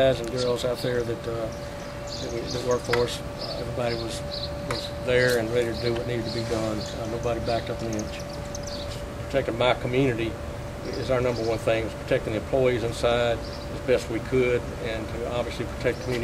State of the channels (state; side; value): identical; both; correlation 1.00